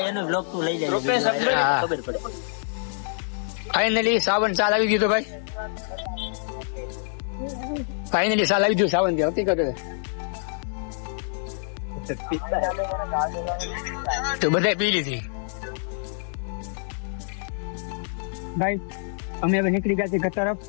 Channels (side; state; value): right; silent; digital silence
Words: એનો વ્લોગ તું લઈ લેજો. હા. ખબર પડે. ફાઇનલી સાવન ચાલ આવી ગયું ભાઈ. ફાઇનલી ચાલ આવી ગયું સાવન થી. હકીકત તો બધા પી લીધી ભાઈ. અમે હવે નીકળી ગયા છીએ ઘર તરફ.